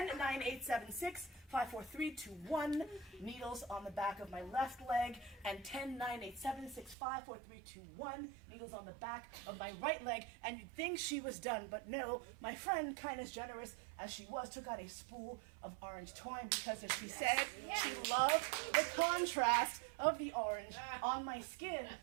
9, 8, 7, 6, 5, 4, 3, 2, 1, needles on the back of my left leg, and 10, 9, 8, 7, 6, 5, 4, 3, 2, 1, needles on the back of my right leg, and you'd think she was done, but no, my friend, kind as generous as she was, took out a spool of orange twine, because as she said, she loved the contrast of the orange on my skin,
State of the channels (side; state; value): left; drops out; at 7.0 s